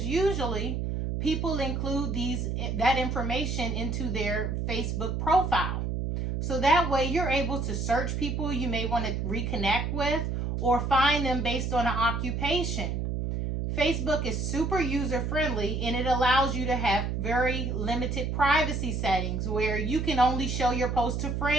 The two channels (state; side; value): noise; right; hum, 1 dB below the sound